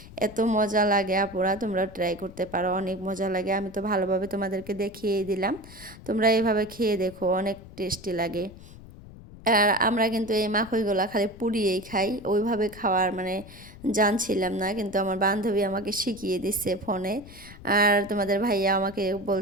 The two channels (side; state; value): left; noise; rumble, 18 dB below the sound